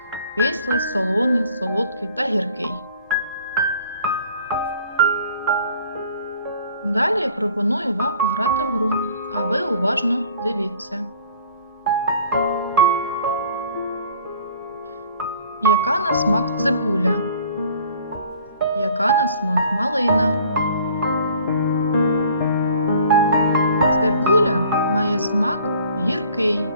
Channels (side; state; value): both; inverted; correlation -0.52